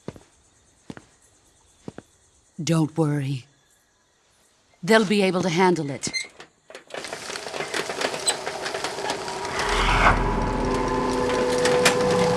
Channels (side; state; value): both; identical; correlation 1.00